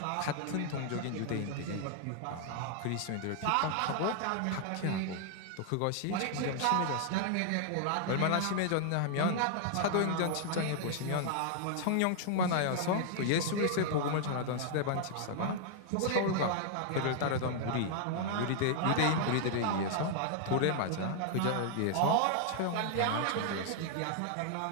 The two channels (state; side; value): different; both; correlation 0.00